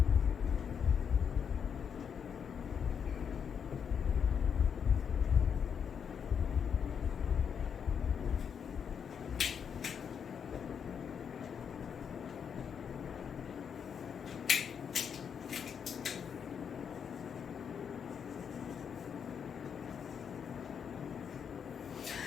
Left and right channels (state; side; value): quieter; right; 7.3 dB